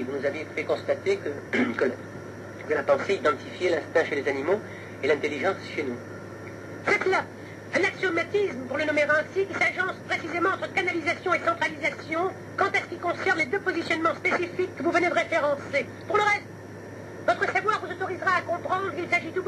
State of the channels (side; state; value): both; identical; correlation 1.00